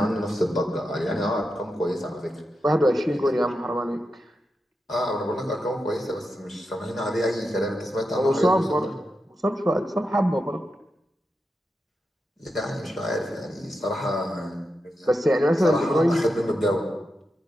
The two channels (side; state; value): both; normal; correlation 0.88